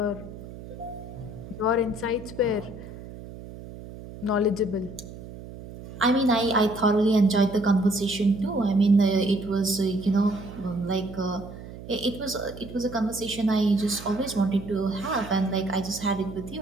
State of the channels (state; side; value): noise; right; hum, 14 dB below the sound